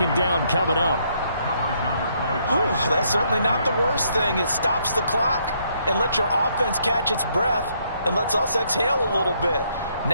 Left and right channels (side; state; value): both; inverted; correlation -0.71